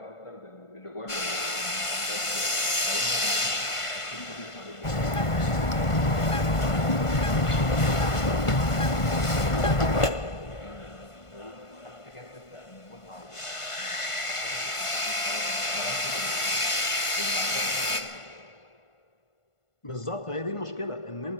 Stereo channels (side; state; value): right; late; 1.5 ms